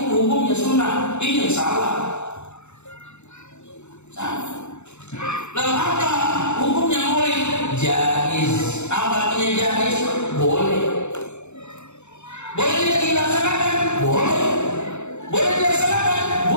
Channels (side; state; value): right; late; 0.82 ms